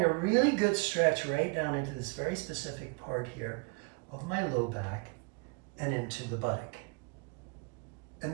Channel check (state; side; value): quieter; left; 32.0 dB